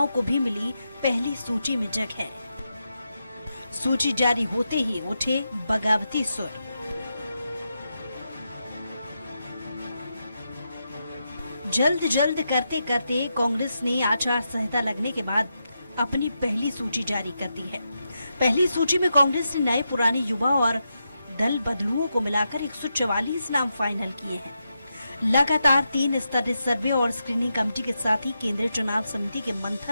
को भी मिली पहली सूची में जगह। सूची जारी होते ही उठे बगावती सुर। जल्द करते करते कांग्रेस ने आचार संहिता लगने के बाद अपनी पहली सूची जारी कर दी है। पहली सूची में कांग्रेस ने नए पुराने युवा और दल बदलुओं को मिलाकर 144 नाम फाइनल किए हैं। लगातार 3 स्तरीय सर्वे और स्क्रीनिंग कमेटी के साथ ही केंद्रीय चुनाव समिति के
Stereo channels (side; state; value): both; inverted; correlation -0.86